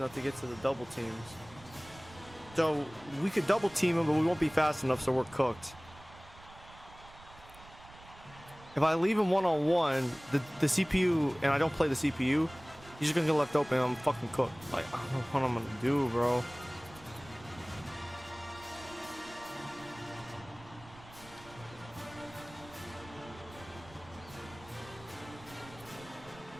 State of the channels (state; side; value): noise; right; rumble, 21 dB below the sound